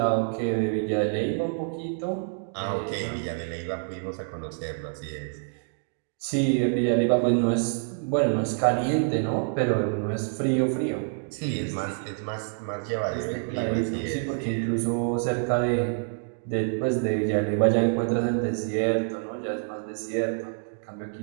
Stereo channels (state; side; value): silent; left; digital silence